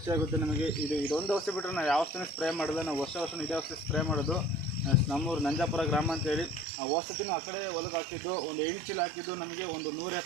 ನಮಗೆ. ಇದೊಂದು ಔಷಧಿ ಬಿಟ್ಟರೆ ನಾವು ಯಾವ ಔಷಧಿನೂ ಸ್ಪ್ರೇ ಮಾಡೋಲ್ಲ. ನಾವು ವರ್ಷ ಇದೇ ಔಷಧಿ ಸ್ಪ್ರೇ ಮಾಡೋದು. ನಮ್ಮೂರು ನಂಜಾಪುರ ಗ್ರಾಮ ಅಂತೇಳಿ. ಆ ಔಷಧಿನೂ ಆ ಕಡೆ ಹೊಲಕ್ಕೆ ಹಾಕಿದ್ದು, ಒಂದು 8 ಚೀಲ ಹಾಕಿದ್ದು, ನಮಗೆ ಒಂದು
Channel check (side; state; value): left; drops out; at 6.7 s